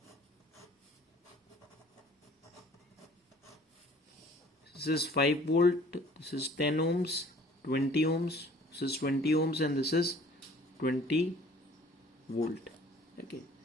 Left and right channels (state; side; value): normal; both; correlation 0.53